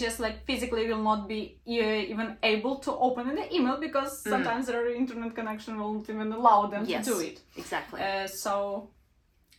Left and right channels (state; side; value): identical; both; correlation 1.00